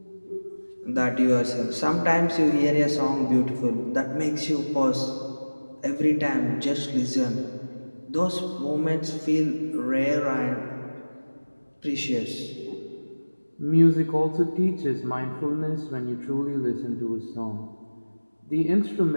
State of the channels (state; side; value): inverted; both; correlation -1.00